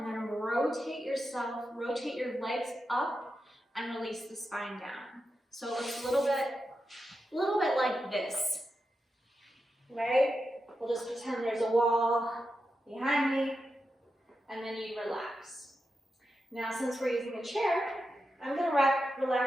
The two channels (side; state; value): both; normal; correlation 0.89